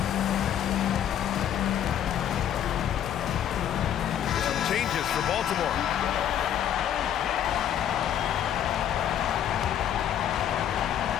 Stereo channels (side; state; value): right; quieter; 10.0 dB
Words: Changes for Baltimore.